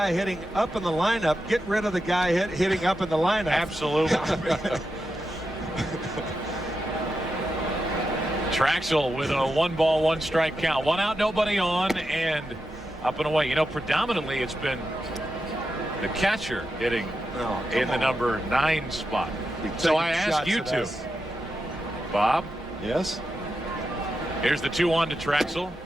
hitting up in the lineup, get rid of the guy hitting up in the lineup. Absolutely. Traxel with a 1-ball, 1-strike count. 1 out, nobody on, and up and away. You know, predominantly it's been the catcher hitting in the number 9 spot. So I ask you two, Bob. Yes. Here's the 2-1 to Traxel.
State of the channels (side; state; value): both; normal; correlation 0.88